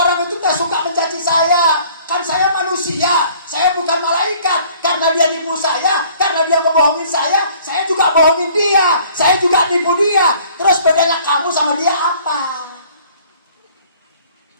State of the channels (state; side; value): inverted; both; correlation -0.55